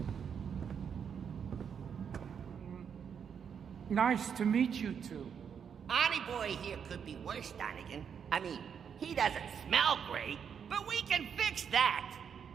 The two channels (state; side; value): quieter; left; 7.4 dB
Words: Nice to meet you two. Arnie boy here could be worse, Donegan. I mean, he doesn't smell great, but we can fix that.